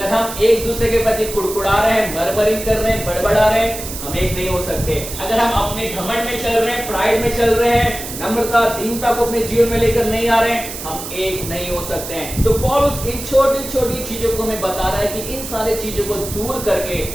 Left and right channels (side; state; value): right; noise; hiss, 9 dB below the sound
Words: हम एक दूसरे के प्रति कुड़कुड़ा रहे हैं, मरमरिंग कर रहे हैं, बड़बड़ा रहे हैं, हम एक नहीं हो सकते। अगर हम अपने घमंड में चल रहे हैं, प्राइड में चल रहे हैं, नम्रता दीनता को अपने जीवन में लेकर नहीं आ रहे हैं, हम एक नहीं हो सकते हैं। तो पौलुस इन छोटी छोटी चीजों को हमें बता रहा है कि इन सारी चीजों को दूर करके